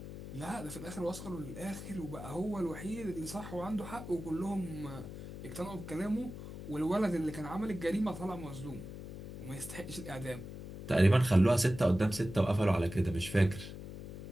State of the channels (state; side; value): noise; left; hum, 11 dB below the sound